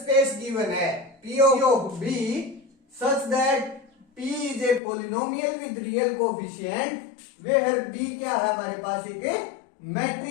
given है P of B such that P is a polynomial with real coefficient where B क्या है? हमारे पास एक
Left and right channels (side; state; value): right; drops out; at 4.8 s